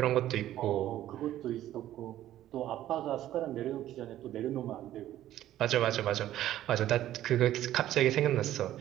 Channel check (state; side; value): quieter; left; 13.1 dB